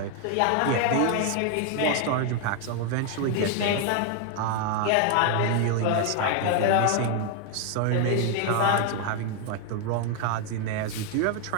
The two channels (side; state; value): both; different; correlation 0.01